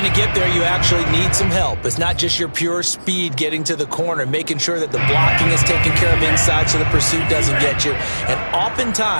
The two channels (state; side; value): inverted; both; correlation -1.00